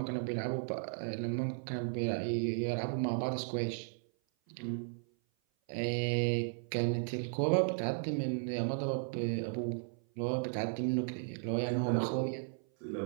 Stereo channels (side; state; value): left; silent; 54 dB below the other